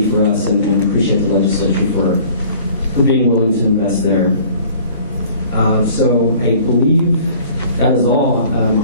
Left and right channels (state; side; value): inverted; both; correlation -0.51